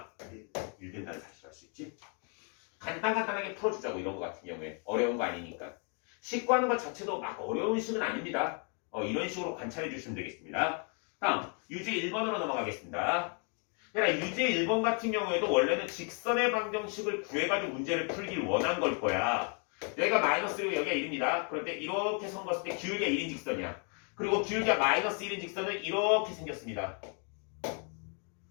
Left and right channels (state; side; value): quieter; right; 39.4 dB